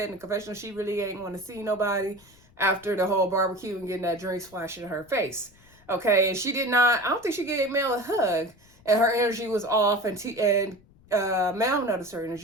in the confessional she really ain't want to see nobody after the whole barbecue and getting that drink splashed in her face. Okay, and she did not, I don't think she gave Mel a hug, and her energy was off, and Mel noticed her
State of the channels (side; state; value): left; noise; rumble, 28 dB below the sound